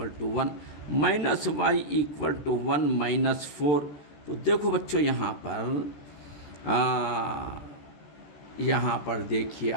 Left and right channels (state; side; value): late; right; 14 ms